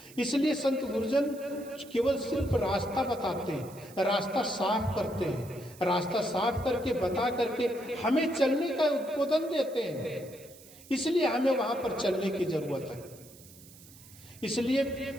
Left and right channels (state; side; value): noise; right; hiss, 21 dB below the sound